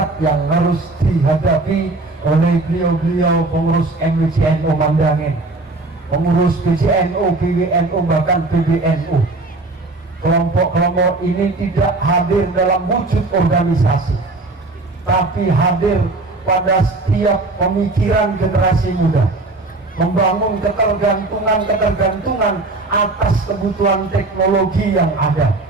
yang harus dihadapi oleh beliau-beliau pengurus MWCNU Mandangin, pengurus PJNU, PWNU, bahkan PBNU. Kelompok-kelompok ini tidak hadir dalam wujud organisasi, tapi hadir pada setiap pemikiran generasi muda, membangun ketergantungan atas kebutuhan teknologi yang ada.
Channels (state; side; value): quieter; left; 3.2 dB